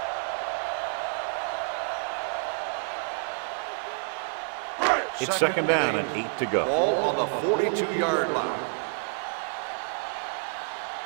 It's 2nd down and 8 to go. Ball on the 42-yard line.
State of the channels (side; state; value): left; silent; 59 dB below the other